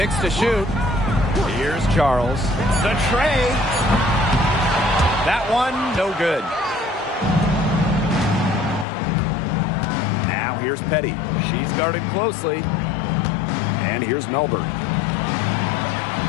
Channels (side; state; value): right; drops out; at 8.8 s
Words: to shoot. Here's Charles. The tray. That one, no good. Now here's Petty. She's guarded closely. And here's Melbourne.